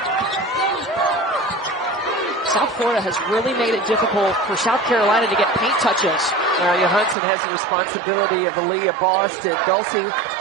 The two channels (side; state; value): left; drops out; at 7.2 s